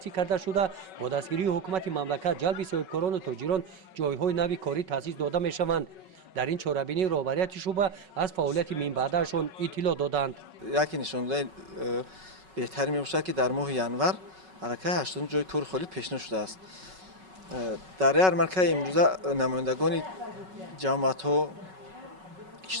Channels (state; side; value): late; left; 5.3 ms